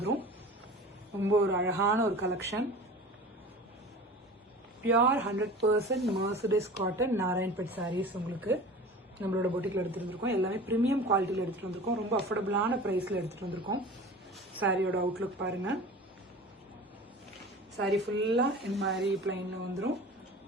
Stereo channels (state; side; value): normal; both; correlation 0.38